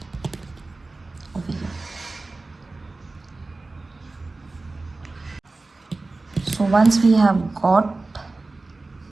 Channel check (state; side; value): quieter; left; 3.3 dB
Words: over here. So once we have got